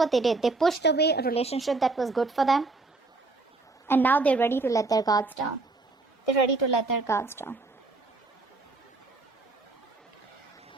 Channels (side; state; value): left; quieter; 3.5 dB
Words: they did. They pushed away a relationship that was good for them, and now they're ready to let their guards down. They're ready to let their guards down.